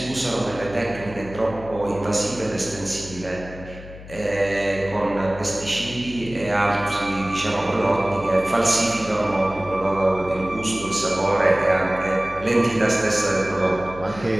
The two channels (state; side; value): noise; left; hum, 15 dB below the sound